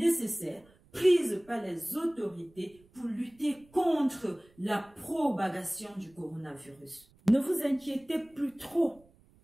prises par les autorités pour lutter contre la propagation du coronavirus. Ne vous inquiétez plus trop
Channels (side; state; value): right; noise; rumble, 29 dB below the sound